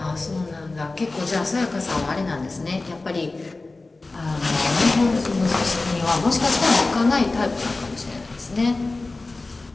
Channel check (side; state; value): right; quieter; 3.3 dB